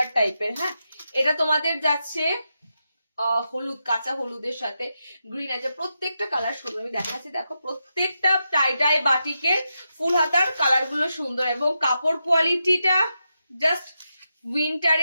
টাইপের। হ্যাঁ, এটা তোমাদের যাচ্ছে হলুদ, কাঁচা হলুদের সাথে গ্রিন আছে। প্রত্যেকটা কালার সুন্দর, আমি দেখাচ্ছি, দেখো প্রত্যেকটা টাই বাটিকের ফুল হাতার কালার গুলো সুন্দর, এবং কাপড় কোয়ালিটিটা জাস্ট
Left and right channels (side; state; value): both; inverted; correlation -0.87